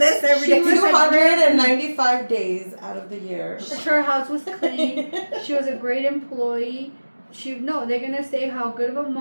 every day. 295 days out of the year. her house was clean. She was a great employee. They're gonna say how good of a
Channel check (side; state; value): both; inverted; correlation -1.00